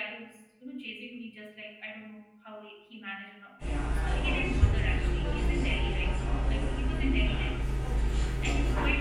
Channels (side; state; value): both; identical; correlation 1.00